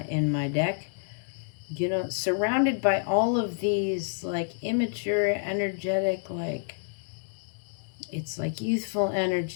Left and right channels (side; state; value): right; silent; digital silence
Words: my deck. You know, surrounded by all of these, like, immature, energetic, like, it's like youthful